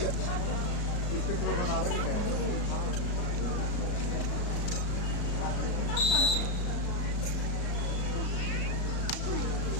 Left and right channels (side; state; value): right; late; 34 ms